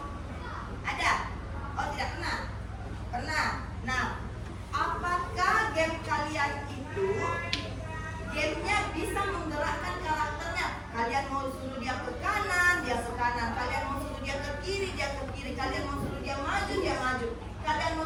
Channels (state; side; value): identical; both; correlation 1.00